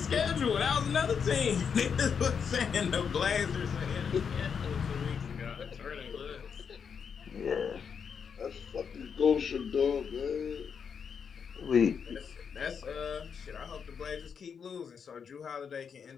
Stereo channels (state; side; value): quieter; right; 6.7 dB